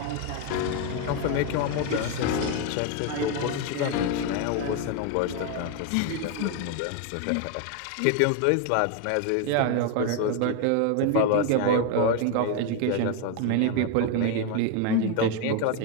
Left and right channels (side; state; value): both; different; correlation 0.01